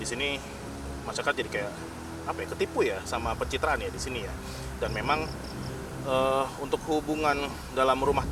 sini masyarakat jadi kayak ketipu ya sama pencitraan ya di sini ya. Dan memang untuk hubungan dalam rumah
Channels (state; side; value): identical; both; correlation 1.00